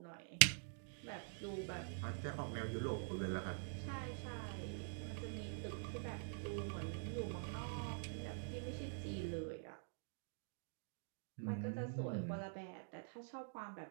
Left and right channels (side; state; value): left; silent; digital silence